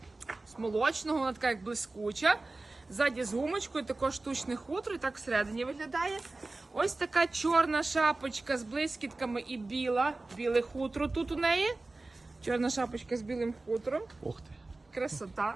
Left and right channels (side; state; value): left; quieter; 3.2 dB